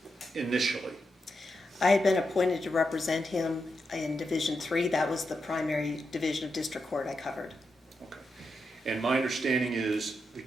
initially? I had been appointed to represent him in Division III. That was the primary division of district court I covered. Okay. And my understanding is the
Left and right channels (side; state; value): both; normal; correlation 0.86